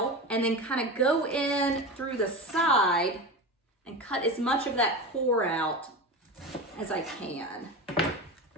and then kind of go in through the side and cut as much of that core out as I can.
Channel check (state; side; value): normal; both; correlation 0.25